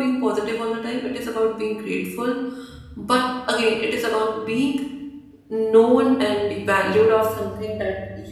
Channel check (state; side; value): identical; both; correlation 1.00